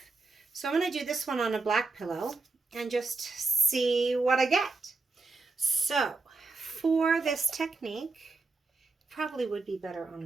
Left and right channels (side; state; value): left; quieter; 3.8 dB